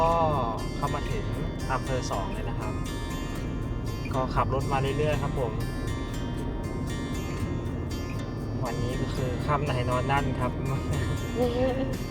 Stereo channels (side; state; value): both; identical; correlation 1.00